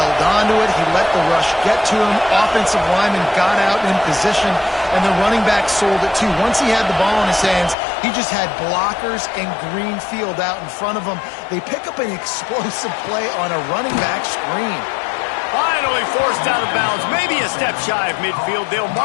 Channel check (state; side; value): drops out; right; at 7.8 s